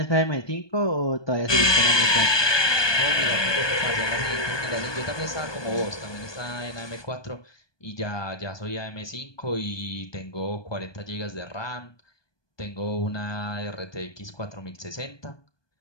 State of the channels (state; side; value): late; right; 1.2 ms